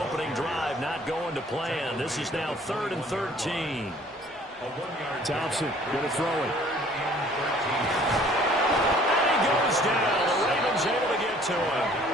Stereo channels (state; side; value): normal; both; correlation 0.55